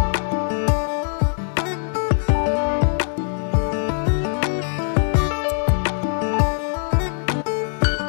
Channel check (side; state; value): right; silent; digital silence